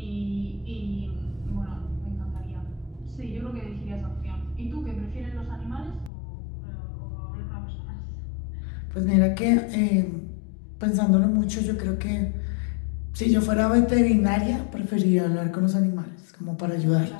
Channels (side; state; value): right; drops out; at 6.1 s